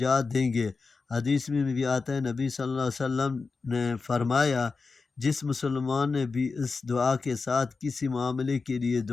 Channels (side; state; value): right; quieter; 4.4 dB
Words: دیں گے۔ حدیث میں بھی آتا ہے، نبی صلی اللہ علیہ وسلم نے فرمایا، جس مسلمان نے بھی اس دعا کے ساتھ کسی معاملے کے لیے